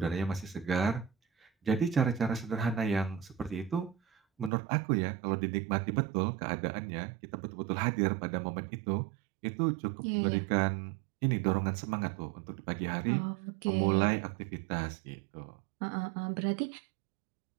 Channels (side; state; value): left; drops out; at 4.5 s